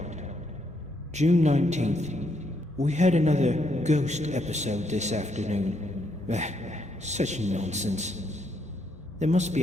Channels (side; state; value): both; normal; correlation 0.75